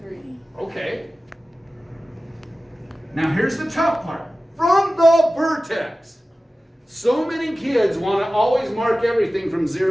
3. Okay. Now, here's the tough part. From the vertex. So many kids want to always mark everything from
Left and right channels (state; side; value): normal; both; correlation 0.96